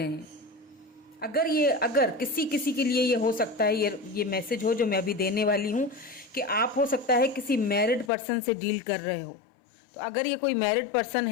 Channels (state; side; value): drops out; right; at 8.1 s